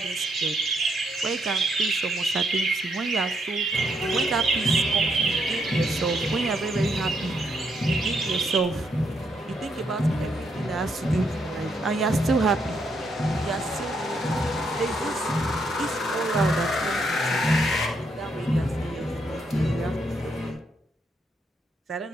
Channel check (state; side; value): normal; both; correlation 0.76